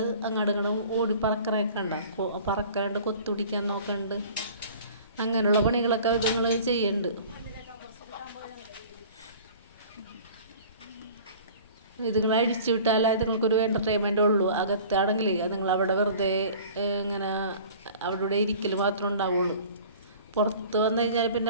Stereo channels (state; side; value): inverted; both; correlation -0.45